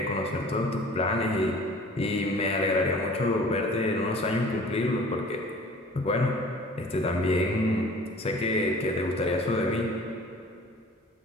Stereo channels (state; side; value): normal; both; correlation 0.47